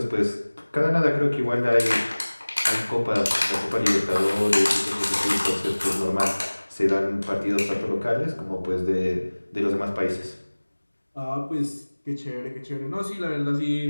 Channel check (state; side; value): inverted; both; correlation -1.00